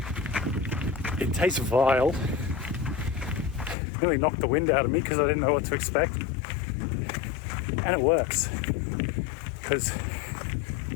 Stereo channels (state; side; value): drops out; right; at 3.8 s